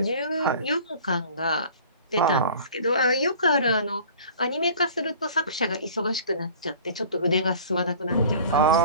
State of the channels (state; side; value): inverted; both; correlation -0.45